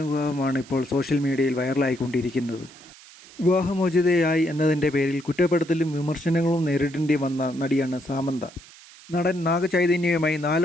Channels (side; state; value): right; noise; hiss, 21 dB below the sound